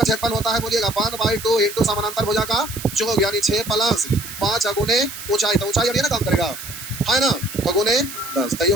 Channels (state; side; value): noise; right; hiss, 11 dB below the sound